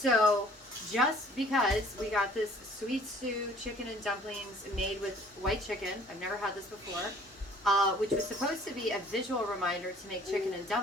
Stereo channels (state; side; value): normal; both; correlation 0.54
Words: just because we got this sweet stew chicken and dumplings made with white chicken, I've never had this before, which was supposed to be a visual reminder to make chicken and